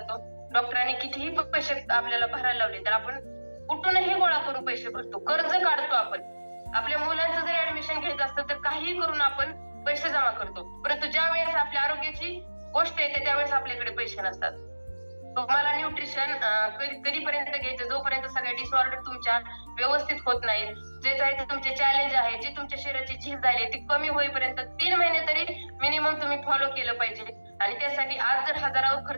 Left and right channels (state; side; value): inverted; both; correlation -1.00